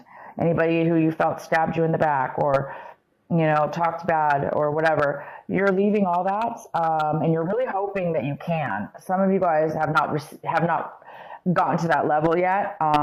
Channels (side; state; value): both; identical; correlation 1.00